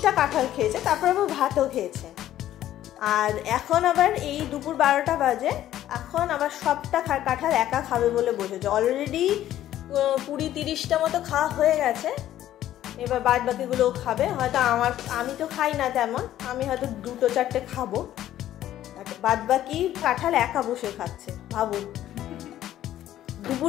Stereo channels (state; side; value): quieter; right; 12.7 dB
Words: কাঁঠাল খেয়েছে, তারপর আবার ভাতও খেয়েছে। আর এখন আবার এই দুপুর 12টা বাজে, এখন আবার সবটা কাঁঠাল একা খাবে বলে বসেছে। অলরেডি 20-30টা মতো খাওয়া হয়ে গেছে, এবার বাদ বাকিগুলোও খাবে। হয়তো আমি তো খাই না তেমন, আমি হয়তো 2-4টে খাবো, বাদ বাকি কাঁঠাল একা বসে খাচ্ছে। ভাবুন,